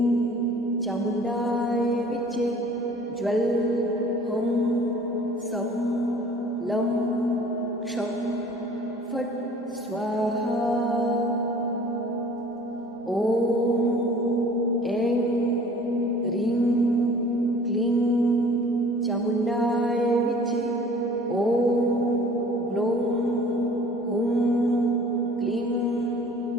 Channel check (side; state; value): both; normal; correlation 0.49